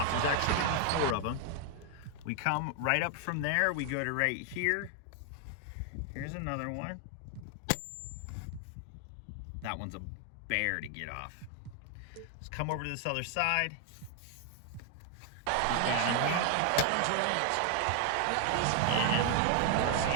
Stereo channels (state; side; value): different; both; correlation 0.00